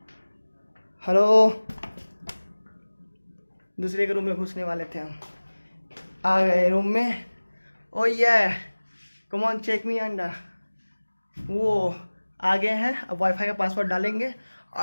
हेलो, दूसरे के रूम में घुसने वाले थे हम, आ गए रूम में। ओ ये कम ऑन चेक मी अंडा, वो आगे हैं। अब वाईफाई का पासवर्ड डालेंगे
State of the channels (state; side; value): inverted; both; correlation -1.00